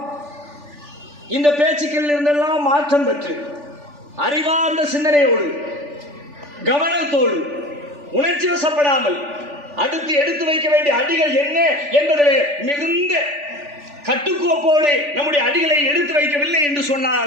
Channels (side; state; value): left; late; 3.4 ms